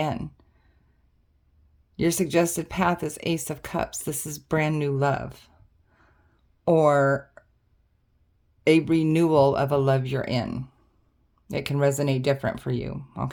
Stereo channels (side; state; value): both; identical; correlation 1.00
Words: Your suggested path is Ace of Cups. This is brand new love, or a renewal of a love you're in. It can resonate different for you,